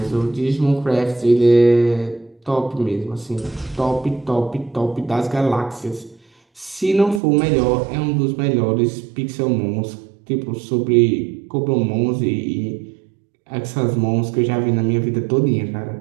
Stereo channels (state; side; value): drops out; left; at 7.2 s